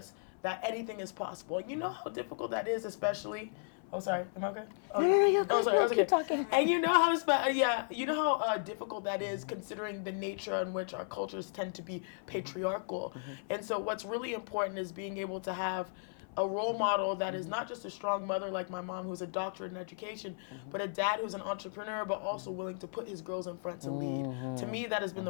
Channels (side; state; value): right; silent; 54 dB below the other